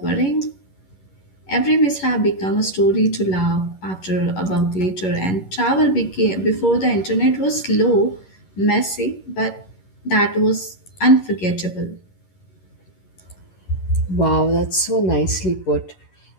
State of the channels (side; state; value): right; late; 11 ms